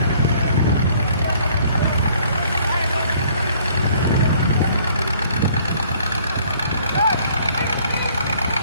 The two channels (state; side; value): inverted; both; correlation -0.58